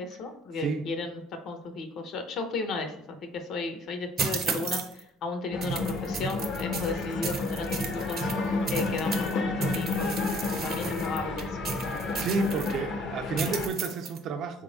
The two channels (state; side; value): normal; both; correlation 0.57